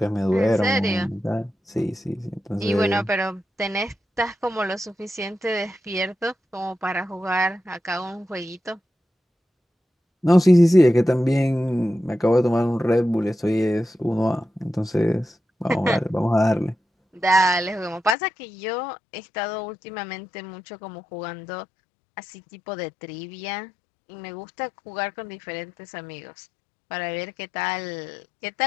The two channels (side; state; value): right; drops out; at 18.2 s